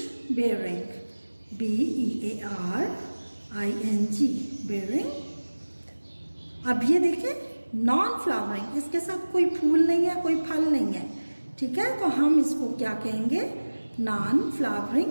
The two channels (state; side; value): inverted; both; correlation -1.00